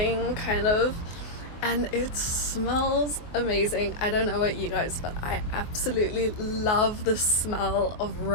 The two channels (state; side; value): late; right; 24 ms